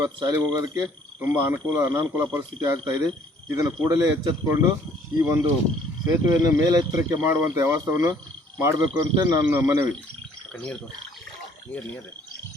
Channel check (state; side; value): normal; both; correlation 0.59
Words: ಶಾಲೆಗೆ ಹೋಗೋದಕ್ಕೆ ತುಂಬ ಅನಾನುಕೂಲ ಪರಿಸ್ಥಿತಿ ಆಗ್ತಾಯಿದೆ. ಇದನ್ನು ಕೂಡಲೇ ಎಚ್ಚೆತ್ತುಕೊಂಡು ಈ ಒಂದು ಸೇತುವೆಯನ್ನು ಮೇಲೆತ್ತರಕ್ಕೆ ಮಾಡುವಂಥ ವ್ಯವಸ್ಥೆಯನ್ನು ಮಾಡಬೇಕು ಅಂತ ನನ್ನ ಮನವಿ.